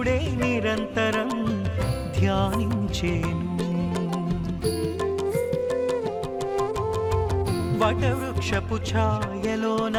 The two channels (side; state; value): both; identical; correlation 1.00